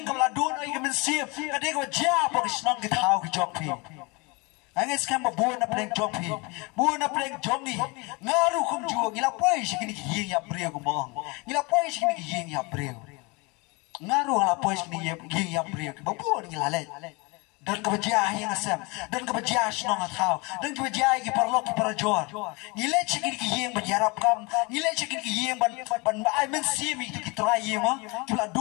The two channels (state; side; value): quieter; right; 27.5 dB